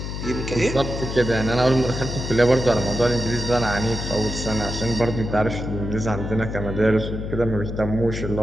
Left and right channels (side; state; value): left; noise; hum, 6 dB below the sound